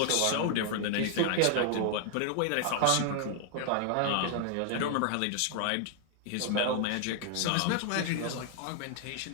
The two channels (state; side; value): different; both; correlation 0.00